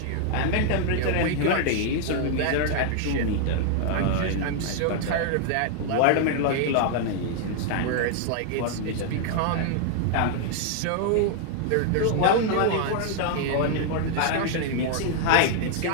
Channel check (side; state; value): both; different; correlation 0.00